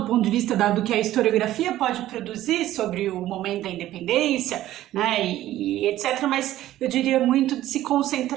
ponto de vista do que a historiografia pode produzir sobre o momento da independência, né, e etc., mas eu diria muito de se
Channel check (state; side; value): quieter; left; 14.1 dB